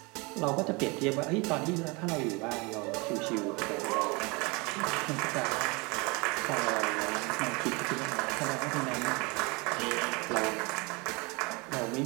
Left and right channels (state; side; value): quieter; left; 27.7 dB